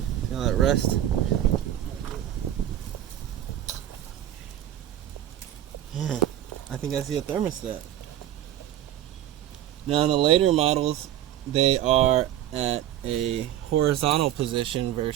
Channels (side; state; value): left; quieter; 12.0 dB